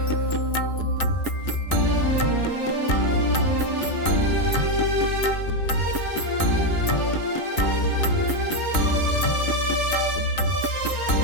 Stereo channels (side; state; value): right; late; 2.9 ms